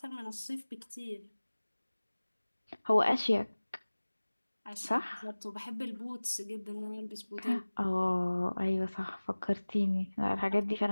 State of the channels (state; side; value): inverted; both; correlation -1.00